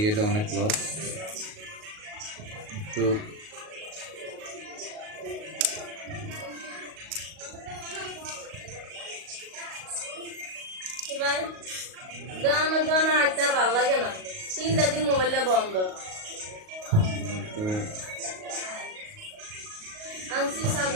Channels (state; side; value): late; left; 38 ms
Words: গেলে অনেক লস। একটু ভালো লাগে না, 3 দিন মোবাইলটা বন্ধ আনছি,